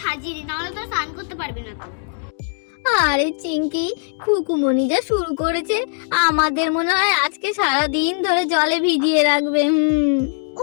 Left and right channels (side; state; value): right; silent; digital silence